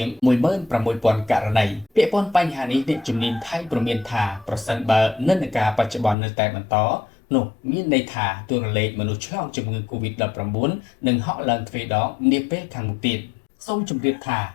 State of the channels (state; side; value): drops out; right; at 6.2 s